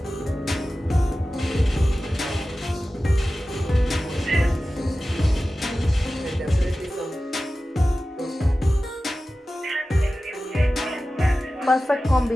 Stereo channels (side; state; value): both; normal; correlation 0.95